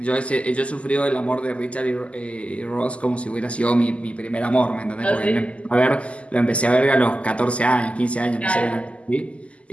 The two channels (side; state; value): right; late; 0.059 ms